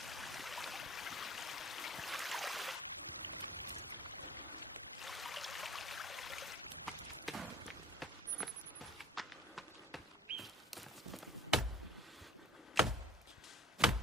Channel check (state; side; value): normal; both; correlation 0.48